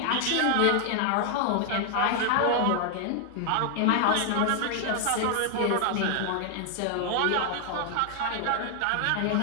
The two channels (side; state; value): both; different; correlation 0.00